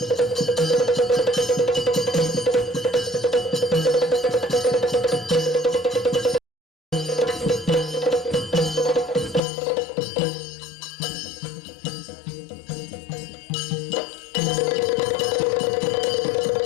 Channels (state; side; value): drops out; right; at 9.4 s